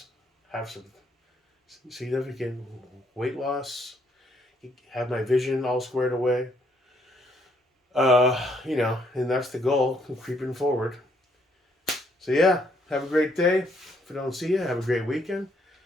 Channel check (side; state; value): both; normal; correlation 0.70